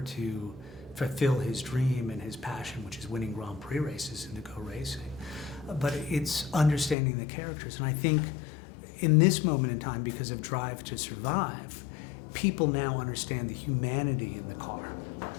to fulfill his dream and his passion, which is winning Grand Prix races and to go racing. But it's understanding the characters, and I think in this moment in time, because of Drive to Survive, people now understand the humanity in the car.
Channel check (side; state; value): right; drops out; at 7.0 s